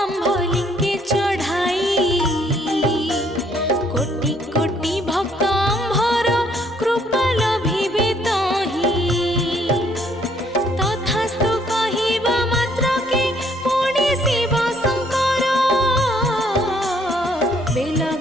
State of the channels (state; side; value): normal; both; correlation 0.65